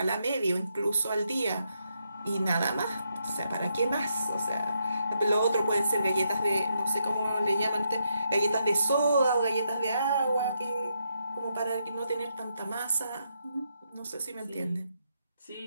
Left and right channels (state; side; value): inverted; both; correlation -0.79